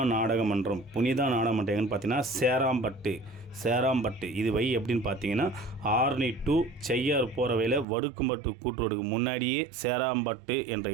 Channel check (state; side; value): drops out; left; at 7.9 s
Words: நாடகமன்றம் எங்கன்னு பார்த்தீங்கன்னா சேராம்பட்டு. இது எப்படின்னு பார்த்தீங்கன்னா ஆரணி டு செய்யார் போகிற வேலை வடுக்கும்பட்டு கூட்டுறதுக்கு முன்னாடியே சேராம்பட்டு என்ற